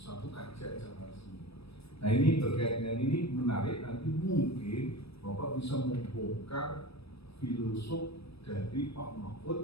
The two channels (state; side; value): late; right; 0.78 ms